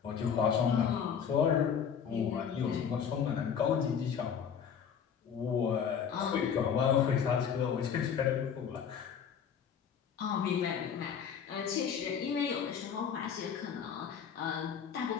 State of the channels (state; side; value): quieter; right; 7.5 dB